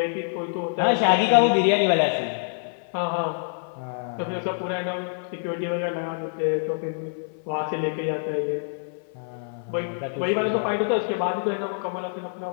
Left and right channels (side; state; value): right; silent; 56 dB below the other